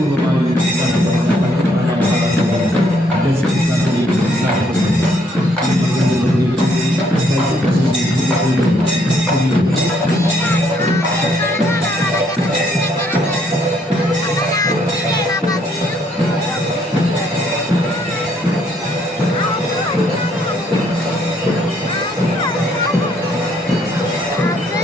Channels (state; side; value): normal; both; correlation 0.68